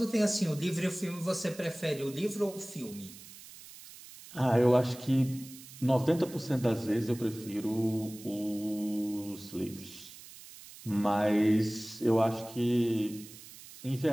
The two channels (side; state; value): right; noise; hiss, 17 dB below the sound